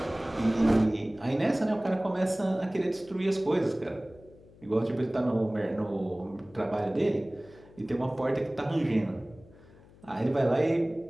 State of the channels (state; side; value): noise; left; hum, 24 dB below the sound